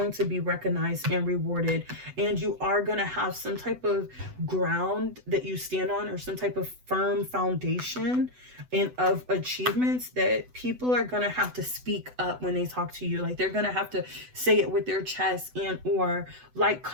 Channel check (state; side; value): late; left; 8.0 ms